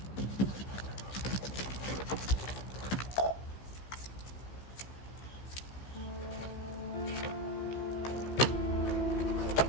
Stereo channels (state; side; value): late; right; 15 ms